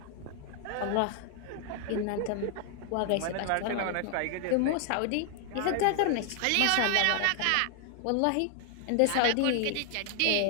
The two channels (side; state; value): both; different; correlation 0.00